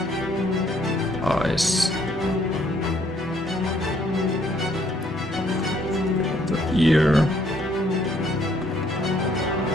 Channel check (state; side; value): normal; both; correlation 0.66